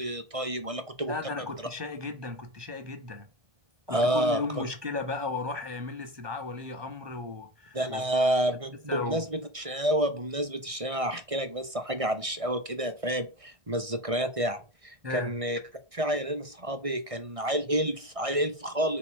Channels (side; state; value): left; late; 1.6 ms